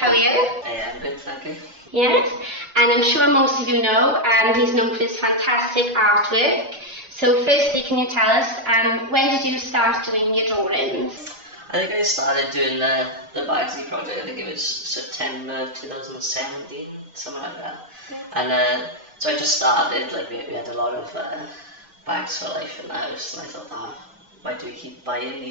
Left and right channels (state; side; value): late; left; 3.4 ms